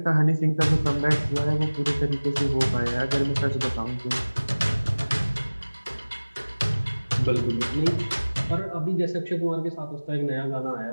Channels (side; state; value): both; inverted; correlation -1.00